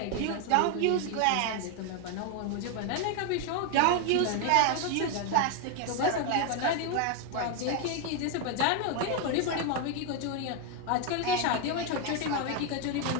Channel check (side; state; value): both; different; correlation 0.01